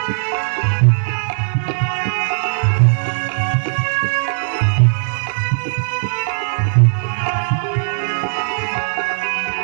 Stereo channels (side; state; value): left; silent; 67 dB below the other